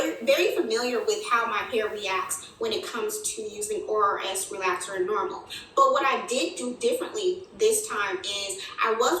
very familiar with how my hair reacts when it comes to using ORS relaxer and normal. But what I did do differently this time is I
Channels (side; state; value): both; identical; correlation 1.00